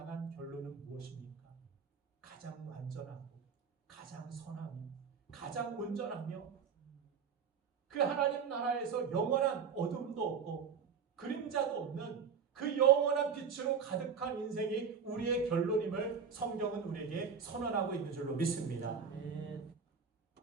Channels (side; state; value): left; quieter; 6.5 dB